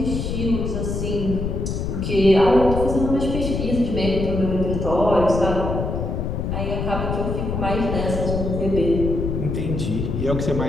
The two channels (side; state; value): left; noise; rumble, 2 dB below the sound